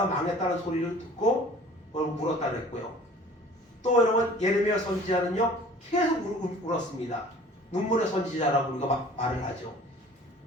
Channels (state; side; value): normal; both; correlation 0.48